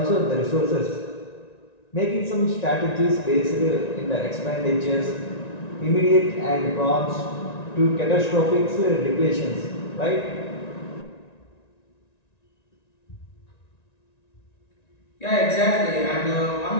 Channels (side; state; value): right; late; 1.9 ms